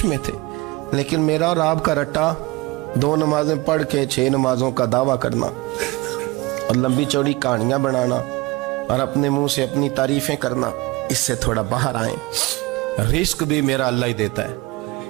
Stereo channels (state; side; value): quieter; left; 22.5 dB